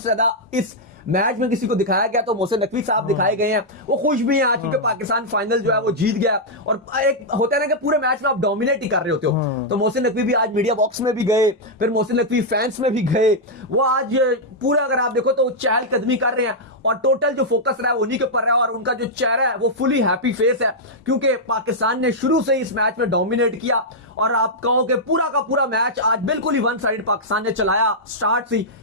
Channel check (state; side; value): normal; both; correlation -0.06